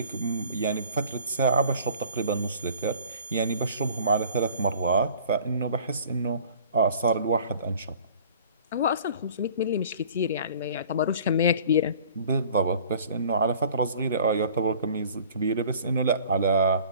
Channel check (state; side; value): inverted; both; correlation -0.49